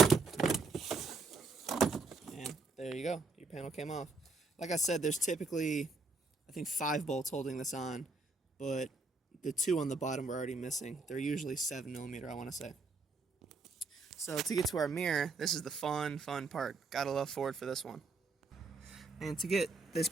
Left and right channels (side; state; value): left; quieter; 3.7 dB